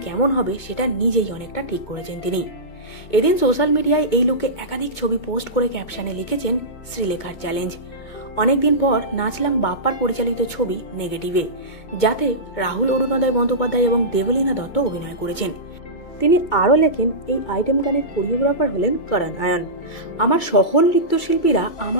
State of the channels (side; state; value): right; late; 2.2 ms